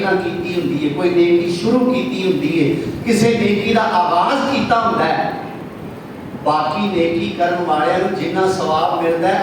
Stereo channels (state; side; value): identical; both; correlation 1.00